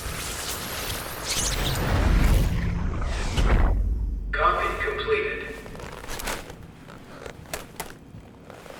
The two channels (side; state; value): both; identical; correlation 1.00